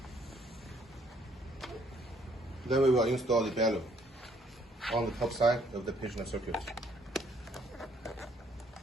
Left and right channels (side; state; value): both; normal; correlation 0.65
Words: Then we will install the bellow on the top side of the patient circuit.